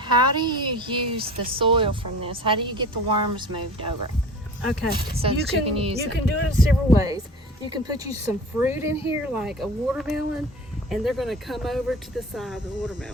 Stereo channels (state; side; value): normal; both; correlation 0.39